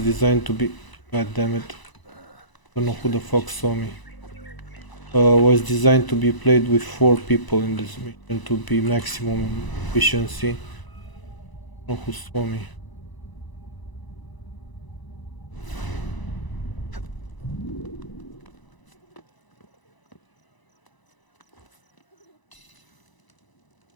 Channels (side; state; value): right; late; 1.0 ms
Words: to be. God damn it! Don't know who the fuck saw me. Was designed to be played with 4 people in this mission to be maximum efficiency. Don't know who saw me.